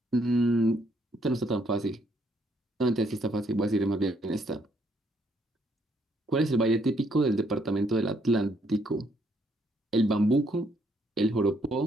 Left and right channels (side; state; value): both; normal; correlation 0.71